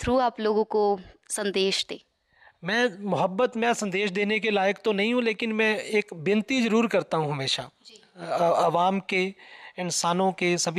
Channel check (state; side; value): identical; both; correlation 1.00